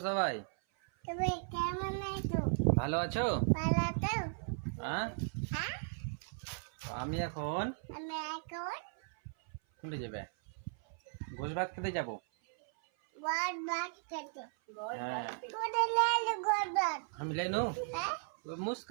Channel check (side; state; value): left; silent; 53 dB below the other